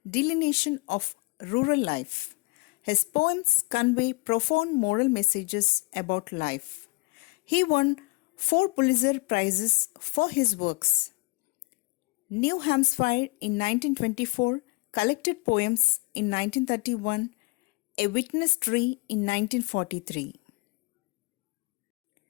delineation of rural life. His poems convey profound moral messages about life. He won 4 Pulitzer Prizes for his works. New Hampshire in 1924, Collected Poems in 1931, A Witness Tree in 1943.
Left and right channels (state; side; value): quieter; right; 25.9 dB